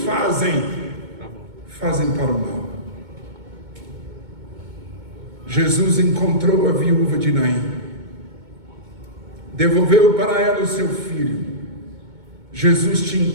para o mal. Jesus encontrou a viúva de Naim, devolveu para ela o seu filho. Jesus te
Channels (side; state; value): left; late; 2.2 ms